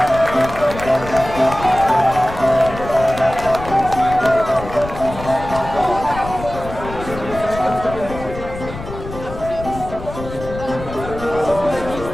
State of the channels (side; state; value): left; noise; rumble, 11 dB below the sound